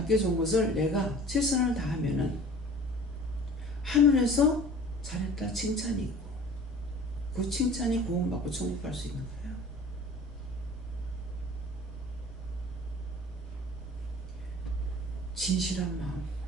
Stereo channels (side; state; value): both; normal; correlation 0.44